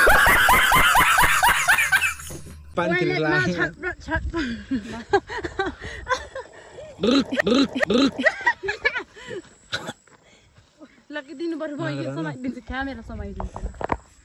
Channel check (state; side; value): identical; both; correlation 1.00